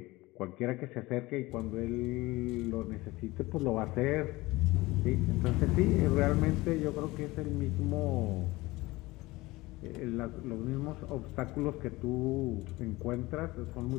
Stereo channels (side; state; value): right; quieter; 20.6 dB